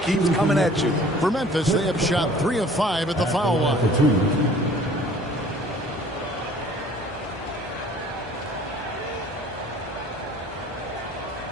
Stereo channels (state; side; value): normal; both; correlation 0.51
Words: keeps coming at you. For Memphis, they have shot 3 of 5 at the foul line.